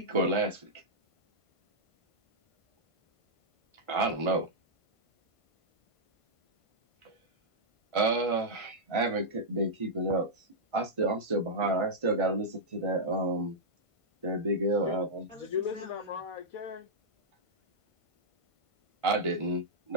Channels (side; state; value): right; late; 1.5 ms